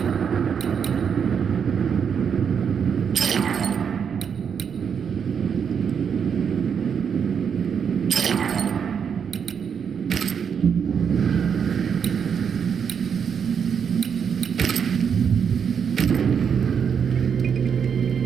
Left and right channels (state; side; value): quieter; left; 7.1 dB